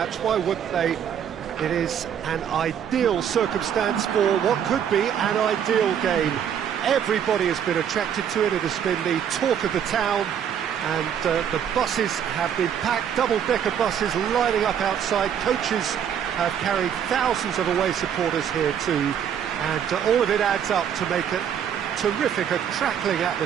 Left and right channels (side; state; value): left; quieter; 8.7 dB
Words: Why wouldn't they? It is an ideal circumstance for what could be an ideal game. Everybody has been attracted to it. It has been the talk of the town, and the buses have been packed, double-decker buses lining up outside. Coaches have carried thousands of away supporters here too, and all of it adds up to make it terrific, a crackling